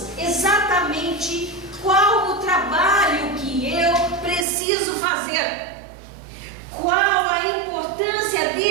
exatamente qual o trabalho que eu preciso fazer, qual a importância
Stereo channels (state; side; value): drops out; left; at 4.5 s